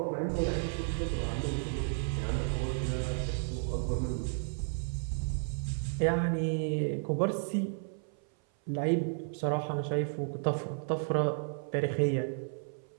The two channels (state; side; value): silent; left; 56 dB below the other